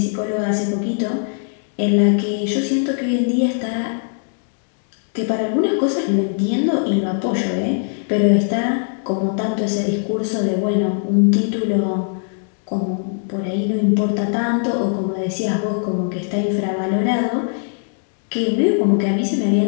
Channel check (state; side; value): silent; right; digital silence